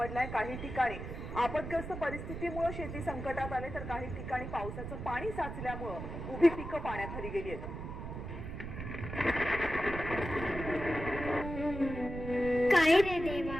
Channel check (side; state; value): right; noise; rumble, 7 dB below the sound